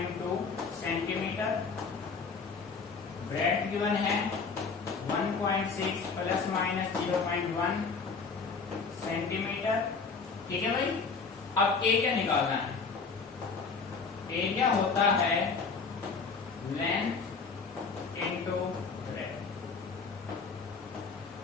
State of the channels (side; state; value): right; quieter; 4.9 dB